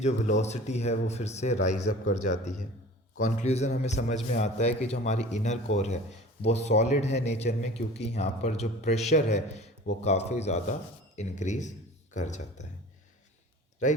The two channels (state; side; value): normal; both; correlation 0.42